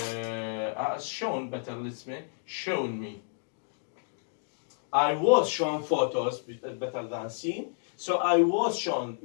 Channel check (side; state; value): right; silent; digital silence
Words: shown. Better, let's say shown me. I was shown photos, better than seen. So I was shown